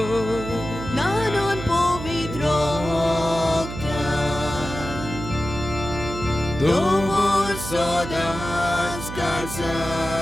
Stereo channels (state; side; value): noise; right; hum, 9 dB below the sound